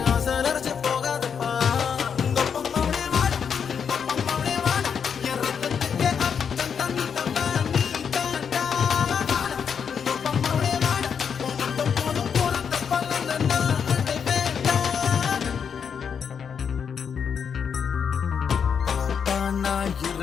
ஆசை நரைச்சு போகாதப்பா உங்க அப்பம்மாவே வாடா அப்பம்மாவே வாடா என் ரத்தத்துக்கு அர்த்தம் தந்தவா நீ தாண்டா வாடா உங்க அப்பம்மாவே வாடா உனக்கு போதும் பிறந்த பலன் நான் அதை வேண்டாம் பாப்பா நான்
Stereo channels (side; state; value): right; quieter; 7.0 dB